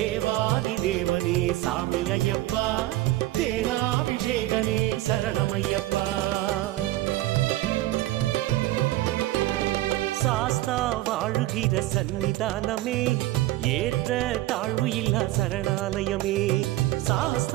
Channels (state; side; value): quieter; left; 16.4 dB